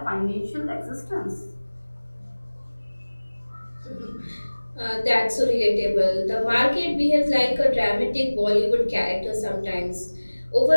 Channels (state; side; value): inverted; both; correlation -1.00